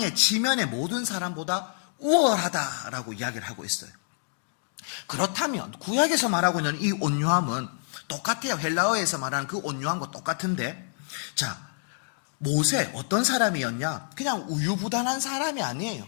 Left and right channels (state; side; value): silent; right; digital silence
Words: 지면의 모든 사람보다 우월하다라고 이야기를 하고 있어요. 그렇다면 구약에서 말하고 있는 이 온유함은 똑같아요. 헬라어에서 말하는 그 온유함과 똑같은데, 자, 모세 어떤 사람이었냐? 그냥 우유부단한 사람이 아니에요.